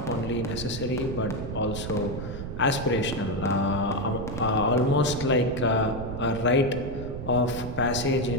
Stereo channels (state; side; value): noise; right; rumble, 7 dB below the sound